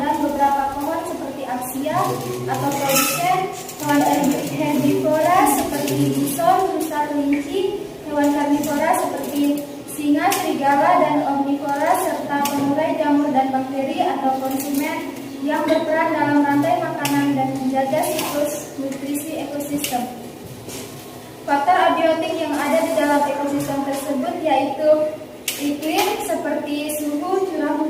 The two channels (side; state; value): both; identical; correlation 1.00